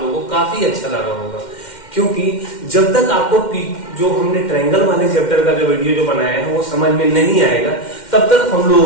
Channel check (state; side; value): late; right; 2.1 ms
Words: लोगों को काफी अच्छा लगा होगा, क्योंकि जब तक आपको जो हमने ट्रायंगल वाले चैप्टर का जो वीडियो जो बनाया है वो समझ में नहीं आएगा, तब तक हम